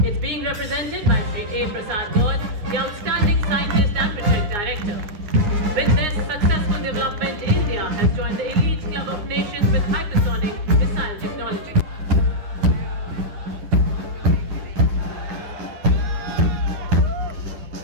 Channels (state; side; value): late; left; 9.6 ms